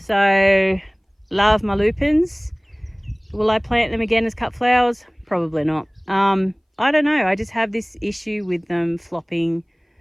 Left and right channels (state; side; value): identical; both; correlation 1.00